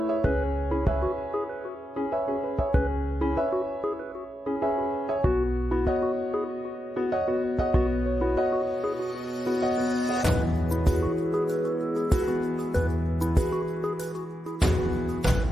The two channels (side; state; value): both; normal; correlation 0.87